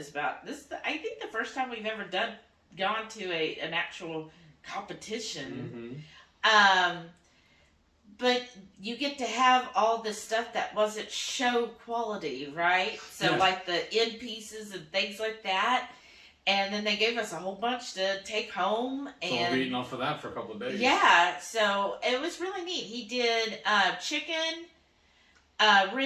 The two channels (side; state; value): both; identical; correlation 1.00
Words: about this. I think the first time we've ever gone to an actual competition. Mm-hmm. But you get to have all this stuff that wasn't show quality, right? So like the end pieces and things like that. And then they gave us a whole bunch to take home. And so we'll be eating off of that for a couple of days. Yeah, so it was really neat. He did chicken,